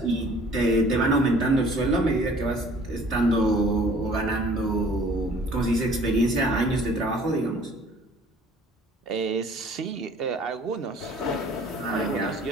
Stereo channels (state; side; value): normal; both; correlation 0.53